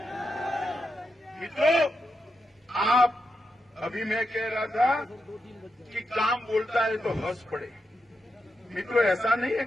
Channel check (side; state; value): both; normal; correlation 0.86